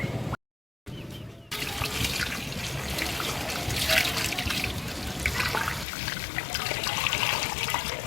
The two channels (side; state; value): right; drops out; at 5.9 s